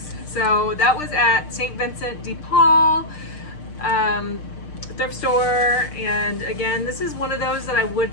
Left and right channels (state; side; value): late; right; 6.7 ms